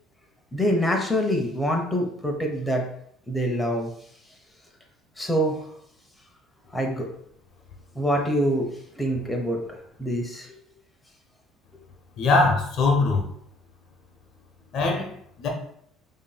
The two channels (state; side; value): normal; both; correlation 0.62